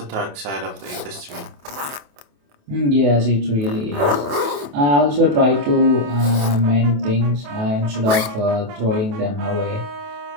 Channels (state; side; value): late; left; 28 ms